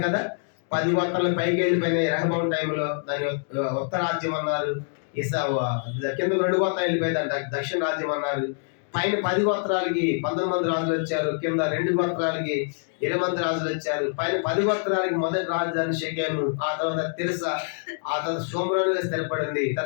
కదా, 10 గోత్రాలు పైకి వెళ్ళిపోయినాయి రెహబాం టైంలో. దాని ఉత్తరాజ్యం అన్నారు. కింద 2 గోత్రాలు వెళ్ళిపోయిందంట, దక్షిణ రాజ్యం అన్నారు. పైన 10 గోత్రాలకి 19 మంది రాజులు వచ్చారు, కింద 2 గోత్రాలకి 20 మంది రాజులు వచ్చారు. పైన 10 గోత్రాలకి మొదటి రాజధాని షెకెము, ఆ తర్వాత తిర్సా, ఆ తర్వాత షోమ్రోనుగా స్థిరపడింది.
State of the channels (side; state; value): right; silent; digital silence